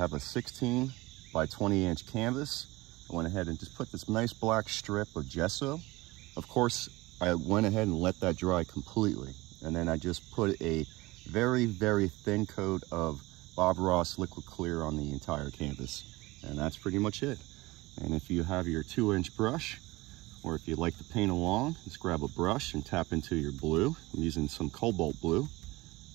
a 16 by 20 inch canvas. I went ahead and just put this nice black strip of gesso. Of course, I went ahead and let that dry completely. And then I just put a very, very thin coat of Bob Ross liquid clear on the entire canvas. And that's pretty much it. And if you have your 2-inch brush, or if you'd like to paint along, just grab a brush and tap into your blue. I'm using some Colbalt Blue.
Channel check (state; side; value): quieter; left; 21.0 dB